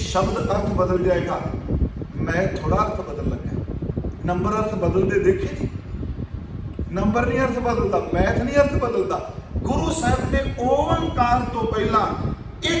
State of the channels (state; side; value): identical; both; correlation 1.00